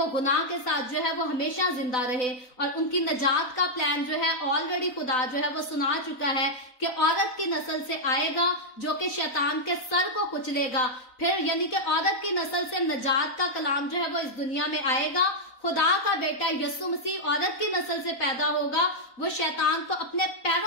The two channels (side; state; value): right; late; 4.0 ms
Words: गुनाह के साथ जो है वो हमेशा जिंदा रहे। और उनकी निजात का प्लान जो है ऑलरेडी खुदा जो है वो सुना चुका है कि औरत की नस्ल से आएगा जो कि शैतान के सर को कुचलेगा। फिर यानी कि औरत की नस्ल से निजात का कलाम जो है वो इस दुनिया में आएगा। खुदा का बेटा यीशु मसीह औरत की नस्ल से पैदा होगा, वो शैतान को अपने